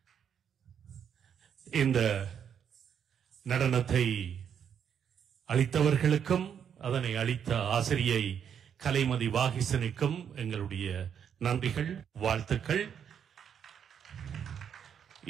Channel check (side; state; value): left; quieter; 8.1 dB